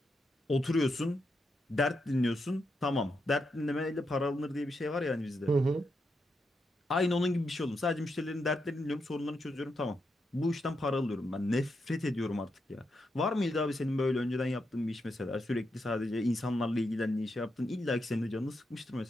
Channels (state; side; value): normal; both; correlation 0.83